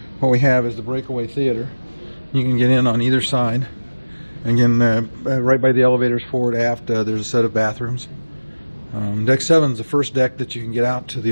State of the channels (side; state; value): both; inverted; correlation -1.00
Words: what we have is the Breakaway Theater. You can get in on either side. Again, right by the elevators forward aft, there's a set of bathrooms. Deck 7 is the first deck that you can get out to